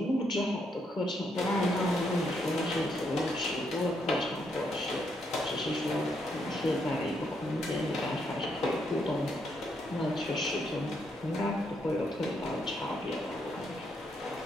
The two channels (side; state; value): both; normal; correlation 0.76